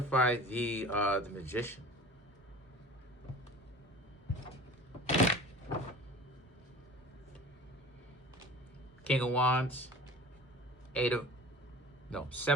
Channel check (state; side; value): normal; both; correlation 0.40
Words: the Magician. King of Wands,